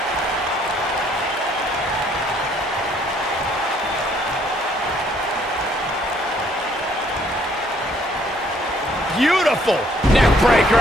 Beautiful neck breaker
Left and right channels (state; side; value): normal; both; correlation 0.64